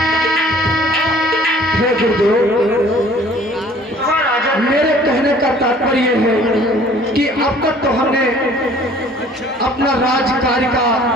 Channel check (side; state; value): both; normal; correlation 0.53